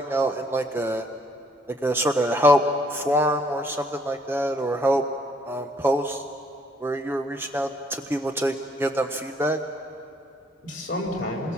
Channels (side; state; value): both; normal; correlation 0.65